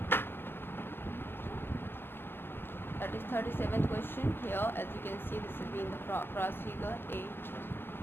That is 37th question here. As you can see, this has been the cross figure A,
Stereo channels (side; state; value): right; late; 0.10 ms